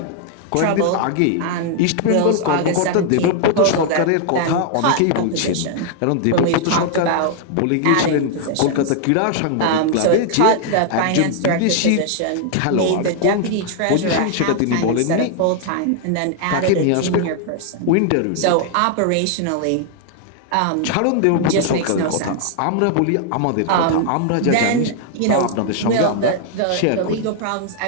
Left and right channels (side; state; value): both; different; correlation 0.00